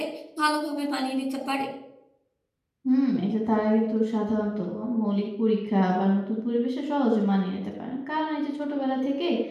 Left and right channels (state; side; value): identical; both; correlation 1.00